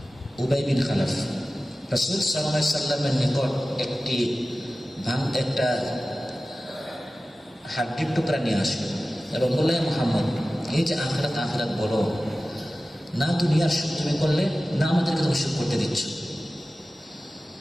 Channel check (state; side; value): normal; both; correlation 0.96